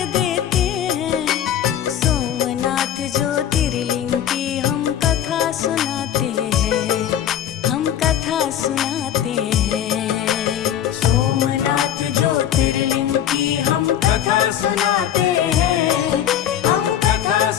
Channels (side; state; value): right; quieter; 10.4 dB